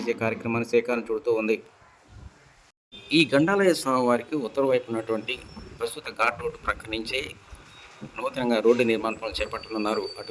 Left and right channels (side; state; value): both; identical; correlation 1.00